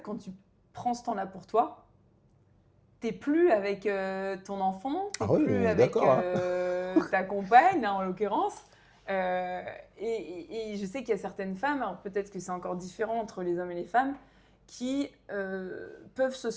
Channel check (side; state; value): both; identical; correlation 1.00